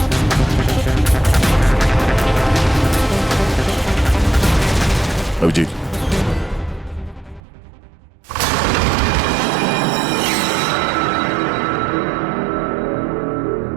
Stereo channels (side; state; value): left; drops out; at 7.4 s